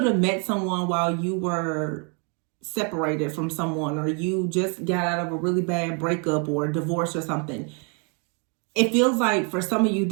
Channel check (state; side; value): quieter; left; 36.5 dB